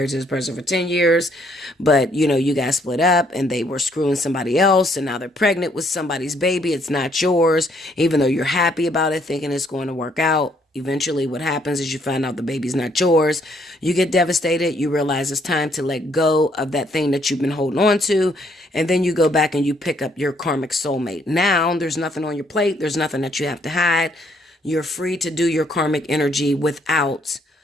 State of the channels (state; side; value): normal; both; correlation 0.68